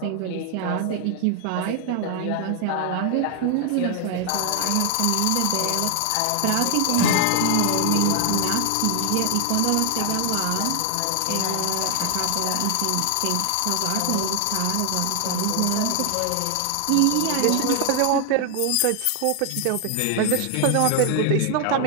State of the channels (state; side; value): different; both; correlation 0.00